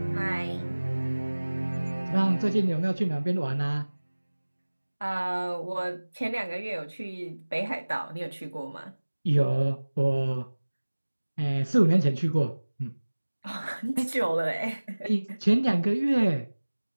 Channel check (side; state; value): both; inverted; correlation -1.00